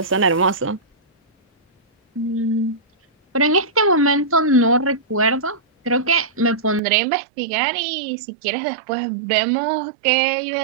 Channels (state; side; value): drops out; left; at 6.8 s